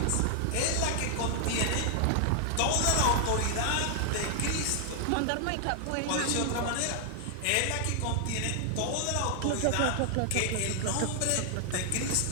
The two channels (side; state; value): both; different; correlation 0.00